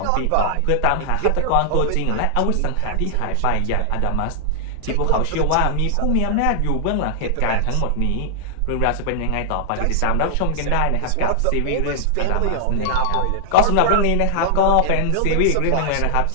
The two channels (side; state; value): both; different; correlation 0.00